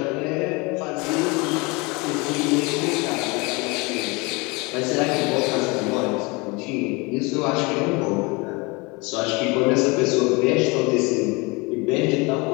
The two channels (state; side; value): quieter; right; 26.7 dB